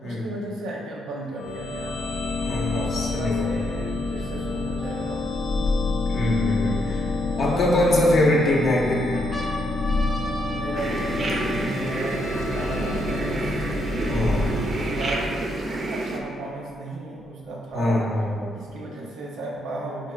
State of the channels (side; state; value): both; normal; correlation 0.77